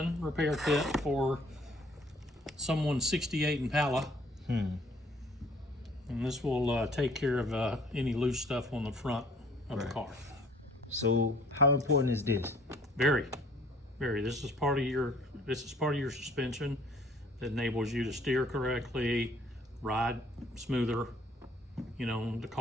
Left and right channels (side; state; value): both; normal; correlation 0.57